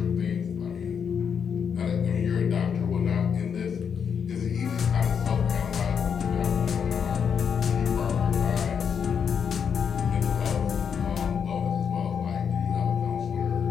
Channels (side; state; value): right; quieter; 7.1 dB